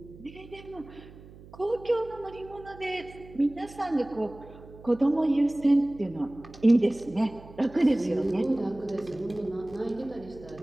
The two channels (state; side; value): noise; right; hum, 19 dB below the sound